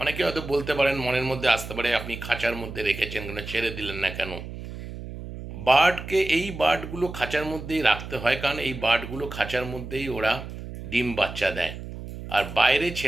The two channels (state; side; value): noise; right; hum, 10 dB below the sound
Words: অনেকে হয়তো বলতে পারেন, মনের মধ্যে আসতে পারে, আপনি খাঁচার মধ্যে রেখেছেন কেন, ছেড়ে দিলেন না কেন? এই বার্ডগুলো খাঁচার মধ্যেই রাখতে হয়, কারণ এই বার্ডগুলো খাঁচার মধ্যেই ওরা ডিম বাচ্চা দেয়। আর বাইরে